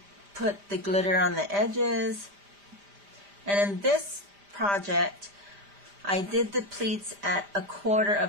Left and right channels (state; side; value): late; left; 5.0 ms